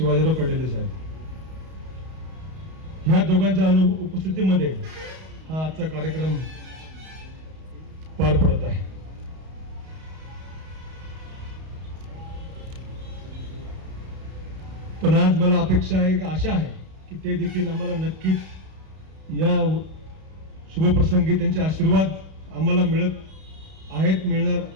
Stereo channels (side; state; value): left; late; 32 ms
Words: कडेले साहेब, ह्या दोघांच्या उपस्थितीमध्ये हा आजचा कार्यक्रम पार पडत आहे. पण आज मला आशा आहे की ते देखील आम्हाला नक्कीच या शुभप्रसंगी त्यांचे आशीर्वाद आम्हाला मिळणार